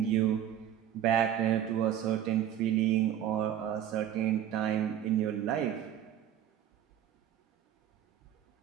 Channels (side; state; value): left; quieter; 10.5 dB